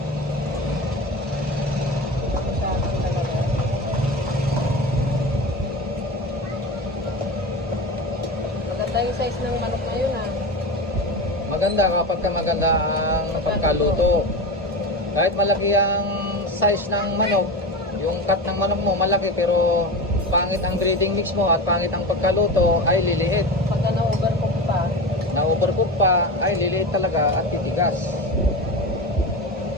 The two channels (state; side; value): normal; both; correlation 0.25